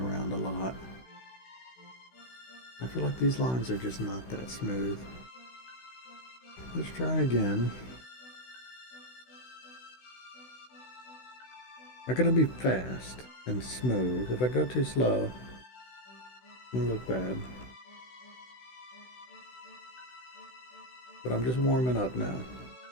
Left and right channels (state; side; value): late; right; 16 ms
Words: a lot. I feel like these lines are just not that smooth. Let's try again. I'm gonna be fast and smooth. If I go too slow, it'll look bad. But I'm just warming up now.